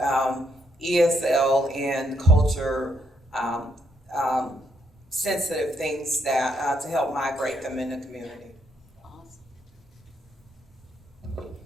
ESL and culture sensitive things that to help migrate them in the community.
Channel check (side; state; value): both; normal; correlation 0.74